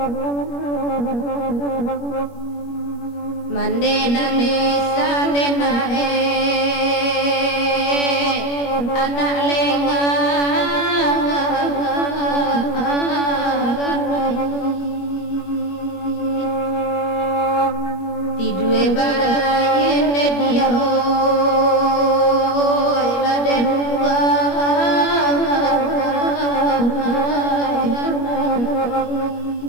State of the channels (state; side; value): late; right; 21 ms